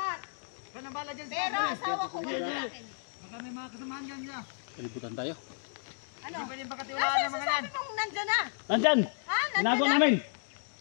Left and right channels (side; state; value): right; silent; digital silence